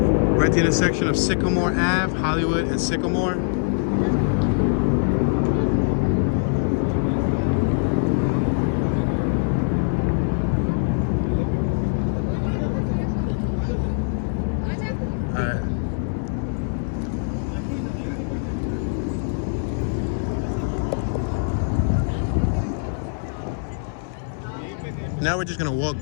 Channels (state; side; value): silent; right; 59 dB below the other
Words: We're at the intersection of Sycamore Ave, Hollywood, and Sycamore. Now we're just gonna walk